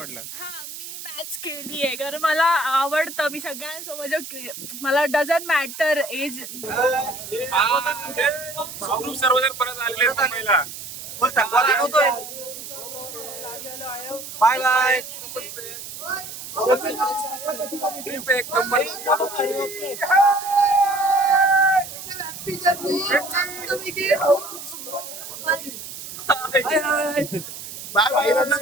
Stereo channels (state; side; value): noise; right; hiss, 11 dB below the sound